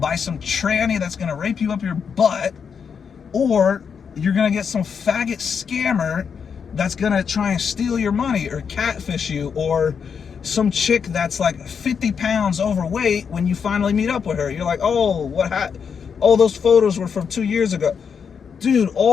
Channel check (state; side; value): quieter; right; 6.6 dB